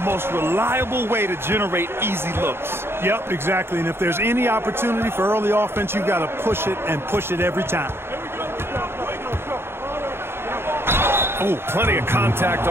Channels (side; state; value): left; late; 0.11 ms